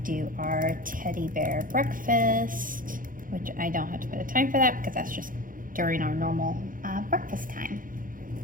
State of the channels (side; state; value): left; late; 0.40 ms